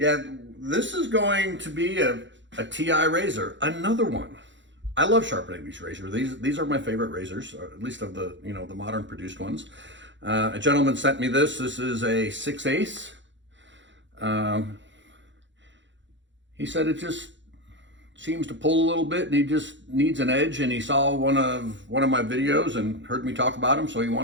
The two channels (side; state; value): left; late; 0.54 ms